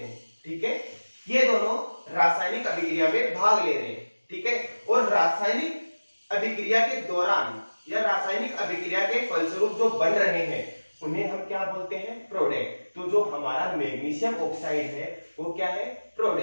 ठीक है। ये दोनों रासायनिक अभिक्रिया में भाग ले रहे हैं, ठीक है। और रासायनिक अभिक्रिया के दौरान या रासायनिक अभिक्रिया के फलस्वरूप जो बन रहे हैं उन्हें हम क्या बोलते हैं, प्रोडक्ट। तो जो हमारा मैग्नीशियम ऑक्साइड है वो क्या है,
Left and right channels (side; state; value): both; inverted; correlation -1.00